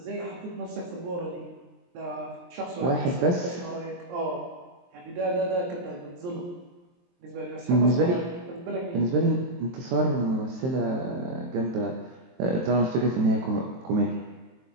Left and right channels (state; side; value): late; left; 23 ms